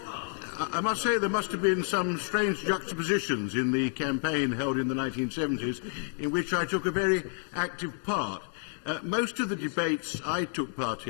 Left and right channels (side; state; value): right; silent; 58 dB below the other